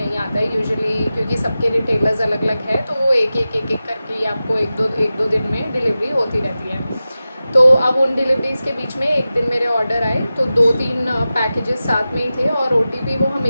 आता है यूजुअली, क्योंकि सबके रिटेलर्स अलग अलग है, तो वो एक एक करके ही आपको एक दो दिन में डिलीवरी होती रहती है। तो अब उन डिलीवरीज़ के बीच में एक दिन मेरे ऑर्डर आए, तो 2-3 पैकेजेस साथ में ही थे। और ओटीपी वो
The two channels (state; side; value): inverted; both; correlation -0.94